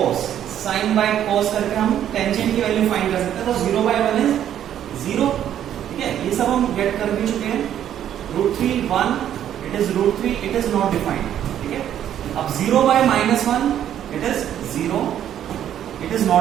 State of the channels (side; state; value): left; quieter; 10.5 dB